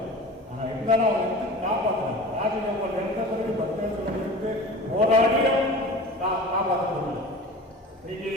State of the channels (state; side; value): normal; both; correlation 0.37